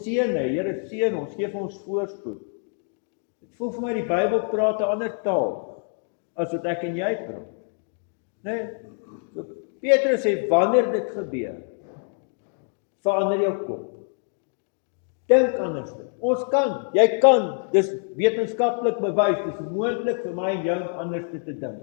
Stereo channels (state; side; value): silent; right; 56 dB below the other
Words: hê, Here seën ons, gee vir ons voorspoed. Dit voel vir my die Bybel praat 'n ander taal as wat ek en jy praat. Nee, so Petrus sê, wanneer dit gebeur, verander jou kop. Dink anders. Ons kan, jy kan, dis wetenskaplik bewys, dis moontlik vir my en jou anders te dink.